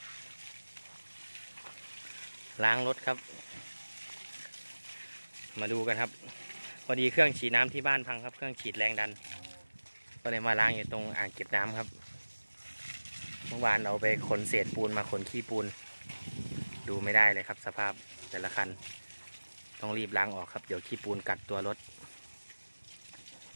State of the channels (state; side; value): inverted; both; correlation -1.00